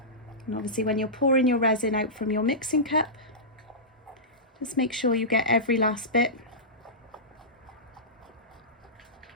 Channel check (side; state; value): both; normal; correlation -0.16